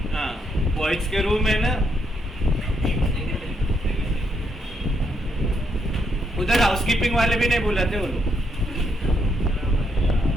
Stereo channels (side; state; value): both; normal; correlation 0.76